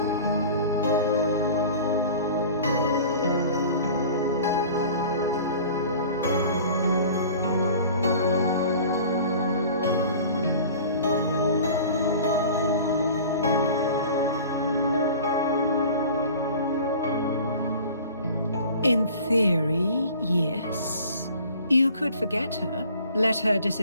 In theory, yes. You could forget her, let her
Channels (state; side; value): inverted; both; correlation -0.43